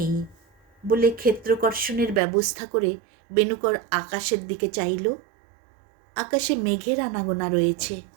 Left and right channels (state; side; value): drops out; left; at 2.2 s